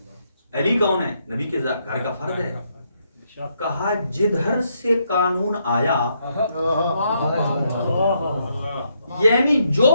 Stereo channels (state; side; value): inverted; both; correlation -0.76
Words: علی کون ہے؟ نبی کے گھر کا فرد ہے. کہا جدھر سے قانون آیا, یعنی جو